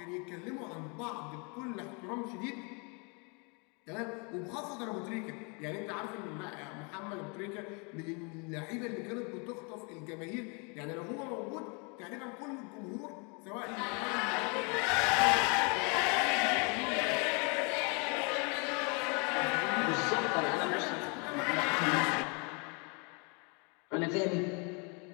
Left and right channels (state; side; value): quieter; right; 33.6 dB